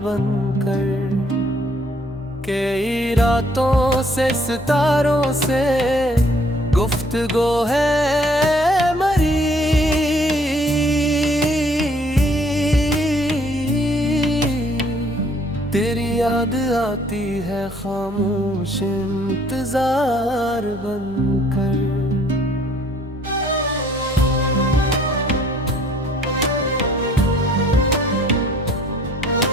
बनकर। कई रातों से सितारों से गुफ्तगू है मरी, तेरी याद आती है खामोश इंतजार बनकर।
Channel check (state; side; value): normal; both; correlation 0.61